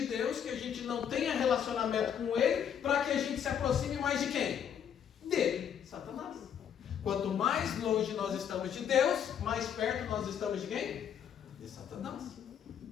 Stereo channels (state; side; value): quieter; right; 8.6 dB